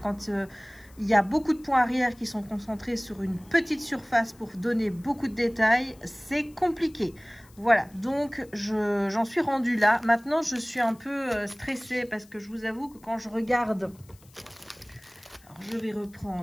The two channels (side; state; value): left; noise; hiss, 27 dB below the sound